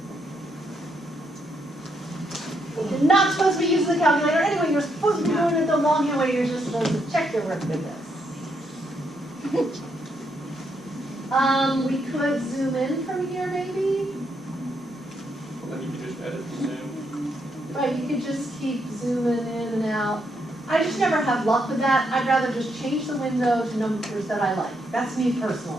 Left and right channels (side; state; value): both; normal; correlation 0.77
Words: You're not supposed to be using the calculator anyway, you're supposed to be doing it the longhand way, you're just supposed to check your work with this. We could zoom in from here maybe. Well, then you can just edit the zoom. Right, you could just keep zooming in and out. I just never have luck with that. I'd rather just change the window to numbers that I like. That's me